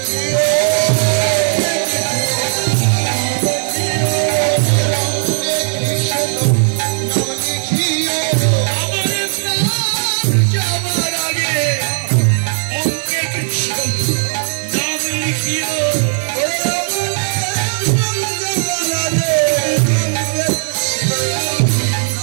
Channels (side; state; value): left; silent; digital silence